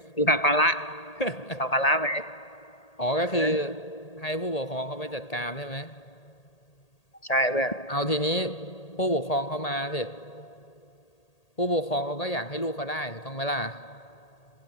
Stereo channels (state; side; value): late; right; 1.8 ms